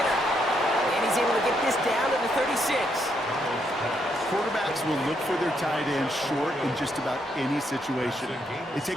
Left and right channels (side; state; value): both; normal; correlation 0.76